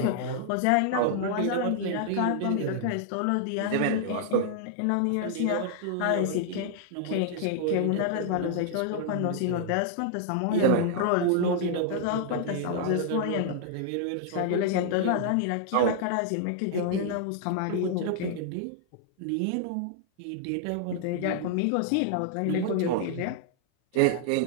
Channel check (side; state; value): both; different; correlation -0.01